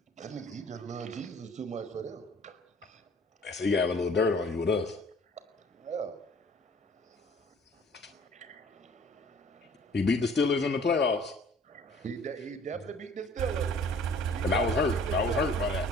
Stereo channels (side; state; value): both; normal; correlation 0.53